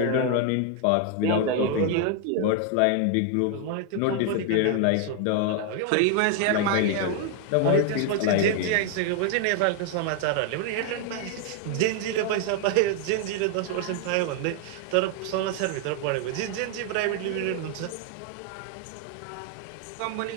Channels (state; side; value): different; both; correlation 0.00